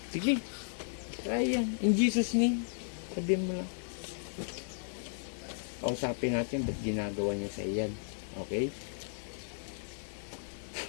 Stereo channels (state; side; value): silent; right; 55 dB below the other